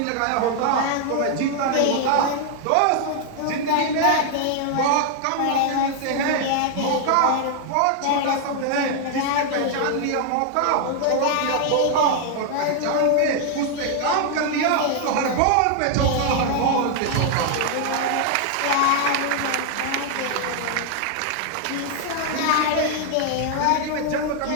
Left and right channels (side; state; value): both; different; correlation 0.00